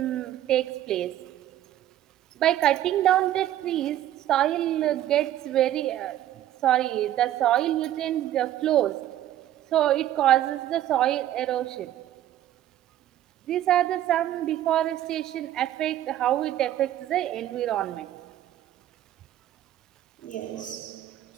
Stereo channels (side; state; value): left; quieter; 12.7 dB